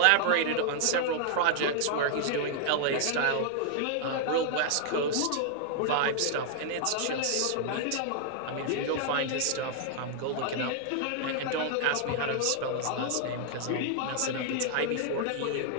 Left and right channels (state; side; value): different; both; correlation 0.00